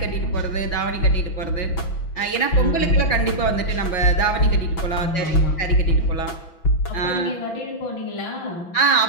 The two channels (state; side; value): late; right; 6.0 ms